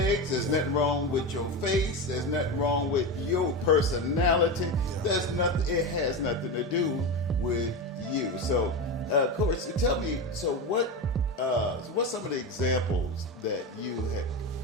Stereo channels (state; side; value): normal; both; correlation 0.19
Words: There's nothing wrong with your face. There's nothing wrong with your personality. There's nothing. It has nothing to do with you. So, Corey, tell me. So, what's some of the examples that you